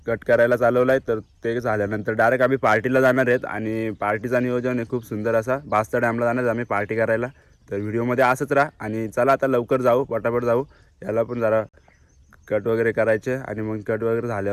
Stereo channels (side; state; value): both; identical; correlation 1.00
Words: कट करायला चालवलं आहे. तर ते झाल्यानंतर डायरेक्ट आम्ही पार्टीला जाणार आहेत आणि पार्टीचा नियोजन आहे खूप सुंदर असा. बास्ता डॅमला जाणार आम्ही पार्टी करायला. तर व्हिडिओमध्ये असंच राहा आणि चला आता लवकर जाऊ, पटापट जाऊ. याला पण जरा कट वगैरे करायचे आणि मग कट वगैरे